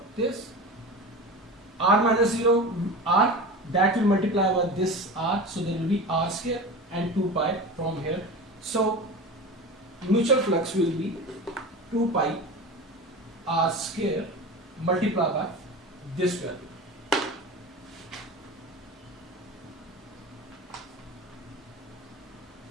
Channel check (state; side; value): normal; both; correlation 0.30